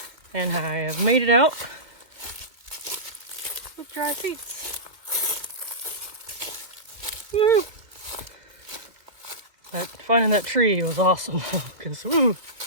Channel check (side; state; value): left; late; 2.4 ms